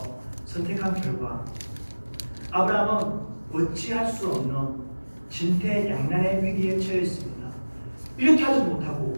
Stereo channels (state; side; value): inverted; both; correlation -1.00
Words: 선택한 결과 아브라함은 어찌할 수 없는 진퇴양난의 위기에 처했습니다. 이렇게 하지도